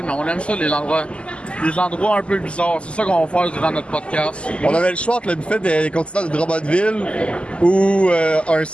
mais on aime ça, les endroits un peu bizarres. C'est ça qu'on va faire durant notre podcast. On avait le choix entre le buffet des continents de Drummondville ou un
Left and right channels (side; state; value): right; late; 0.054 ms